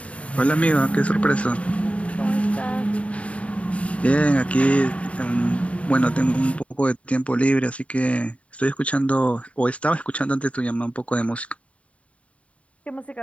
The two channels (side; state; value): right; late; 0.064 ms